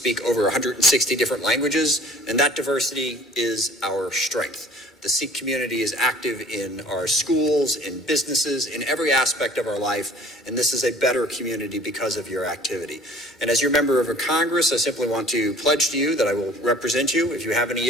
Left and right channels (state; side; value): normal; both; correlation 0.50